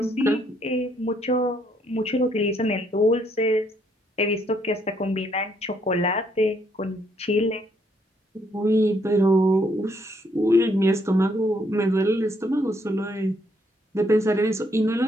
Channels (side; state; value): both; normal; correlation 0.71